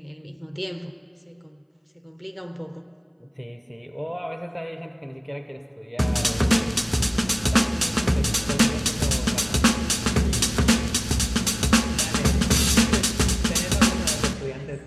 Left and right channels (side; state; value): both; identical; correlation 1.00